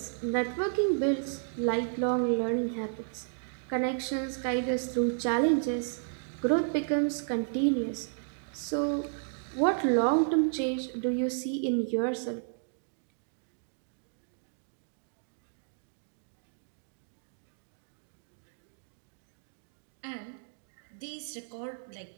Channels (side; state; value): left; silent; digital silence